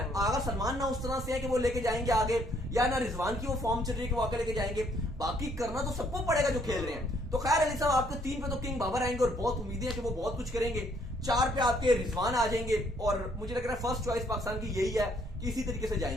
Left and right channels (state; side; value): normal; both; correlation 0.66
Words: अगर सलमान ना उस तरह से है कि वो लेके जाएंगे आगे, या ना रिजवान की वो फॉर्म चल रही है कि वो आगे लेके जाएंगे, बाकी करना तो सबको पड़ेगा जो खेल रहे हैं। तो खैर अली साहब, आपके 3 पे तो किंग बाबर आएंगे और बहुत उम्मीदें हैं कि वो बहुत कुछ करेंगे। 4 पे आपके रिजवान आ जाएंगे, और मुझे लग रहा है फर्स्ट चॉइस पाकिस्तान की यही है कि इसी तरीके से